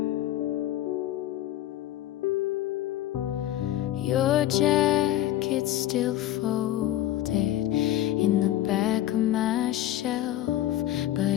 Your jacket's still folded in the back of my shelf,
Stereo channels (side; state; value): right; quieter; 13.4 dB